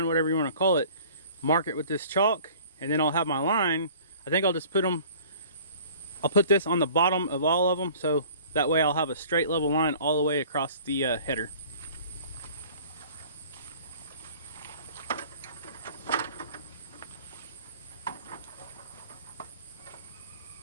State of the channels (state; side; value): inverted; both; correlation -0.49